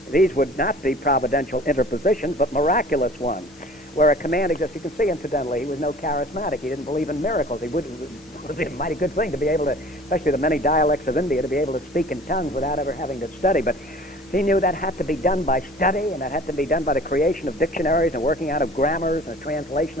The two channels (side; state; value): both; normal; correlation 0.47